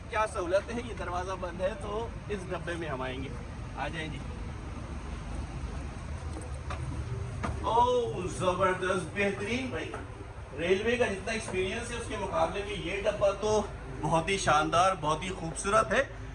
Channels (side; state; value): both; identical; correlation 1.00